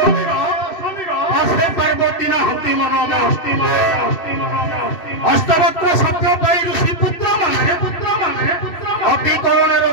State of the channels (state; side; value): late; right; 2.7 ms